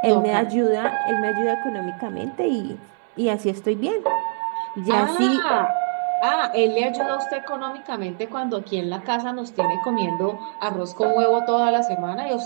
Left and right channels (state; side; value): silent; left; 64 dB below the other